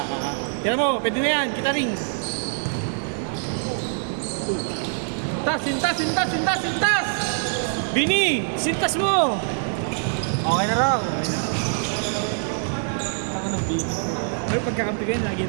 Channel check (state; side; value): silent; left; 63 dB below the other